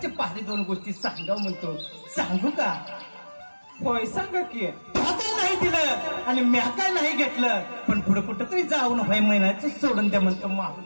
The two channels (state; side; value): inverted; both; correlation -1.00